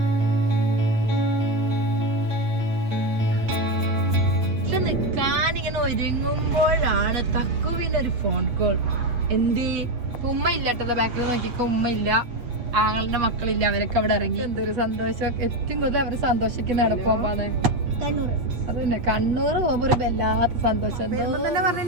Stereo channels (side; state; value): left; late; 8.5 ms